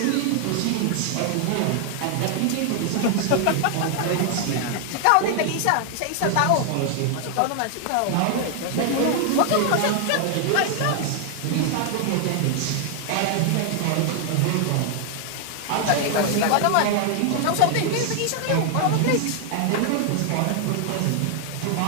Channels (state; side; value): different; both; correlation 0.00